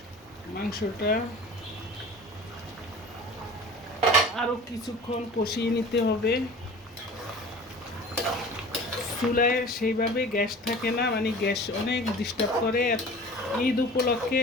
মাংসটা আরও কিছুক্ষণ কষিয়ে নিতে হবে। চুলায় সেইভাবে গ্যাস থাকে না, মানে গ্যাস অনেক ডিস্টার্ব করে। ঈদ উপলক্ষে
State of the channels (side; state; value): both; normal; correlation 0.41